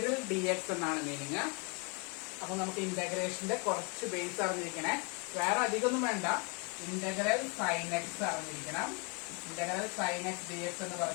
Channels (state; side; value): quieter; right; 32.8 dB